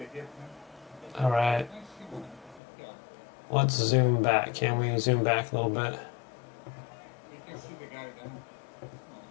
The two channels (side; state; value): right; drops out; at 2.6 s